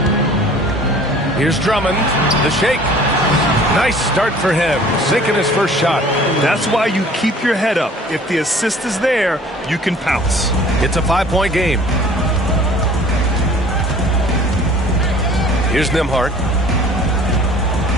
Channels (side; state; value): both; normal; correlation 0.50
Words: Here's Drummond. The shake. Nice start for him. Sinking his first shot. That's why you keep your head up. If the assist is there, you can pounce. It's a 5-point game. Here's Nembhard.